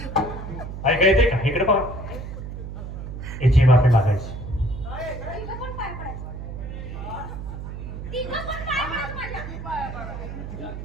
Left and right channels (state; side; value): noise; right; hum, 8 dB below the sound